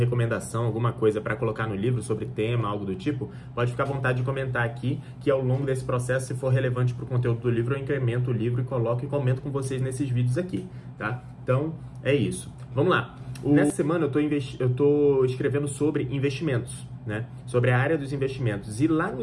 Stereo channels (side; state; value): both; identical; correlation 1.00